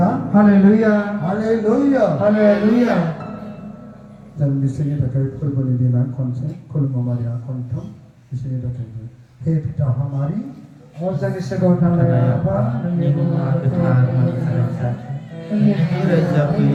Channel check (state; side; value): identical; both; correlation 1.00